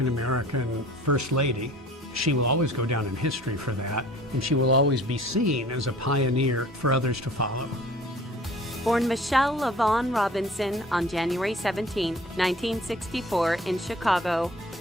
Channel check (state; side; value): normal; both; correlation 0.48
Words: First Lady. She will always go down in history for that, and she will always be seen as a pioneer for others to follow. Born Michelle LaVaughn Robinson on January 17, 1964 in Chicago,